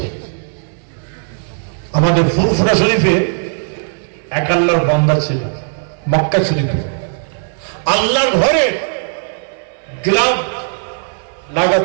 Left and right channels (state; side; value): silent; left; digital silence